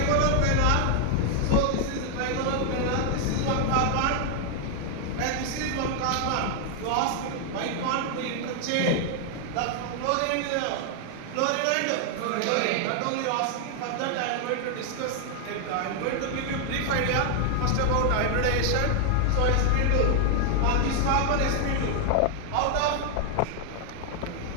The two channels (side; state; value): both; different; correlation 0.00